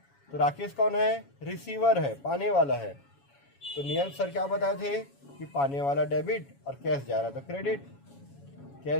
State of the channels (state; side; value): late; right; 7.2 ms